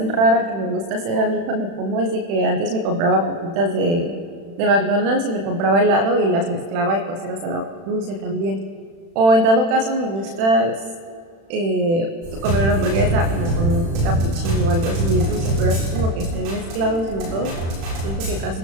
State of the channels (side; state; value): left; late; 36 ms